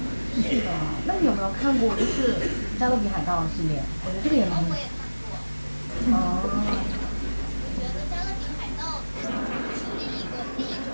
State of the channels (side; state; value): both; inverted; correlation -1.00